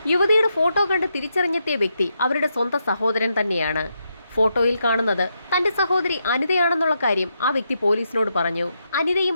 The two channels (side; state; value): both; inverted; correlation -0.82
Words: യുവതിയുടെ ഫോട്ടോ കണ്ട് തിരിച്ചറിഞ്ഞെത്തിയ വ്യക്തി അവരുടെ സ്വന്തം സഹോദരൻ തന്നെയാണ്. ഫോട്ടോയിൽ കാണുന്നത് തന്റെ സഹോദരി അനിതയാണെന്നുള്ള കാര്യം ആ വ്യക്തി പോലീസിനോട് പറഞ്ഞു.